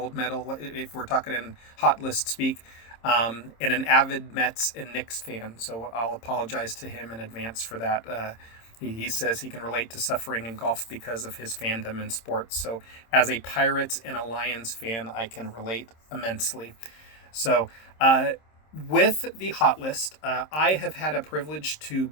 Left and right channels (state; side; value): late; right; 26 ms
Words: medal, if we're talking in hot list speak. And an avid Mets and Knicks fan. So I'll apologize to him in advance for that. He says he can relate to suffering in golf because of his fandom in sports. So as a Pirates and a Lions fan, I can relate immensely. So with the hot list, I have had a privilege to